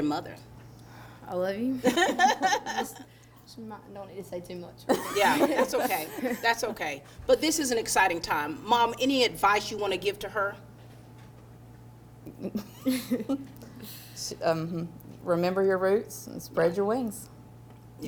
mother? I love you. Don't need to say too much. Yeah, that's okay. That's okay. But this is an exciting time. Mom, any advice you want to give to her? Remember your roots and spread your wings.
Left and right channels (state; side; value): identical; both; correlation 1.00